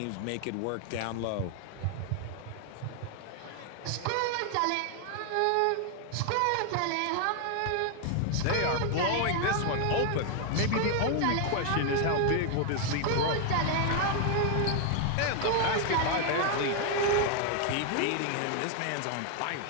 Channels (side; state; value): both; different; correlation 0.00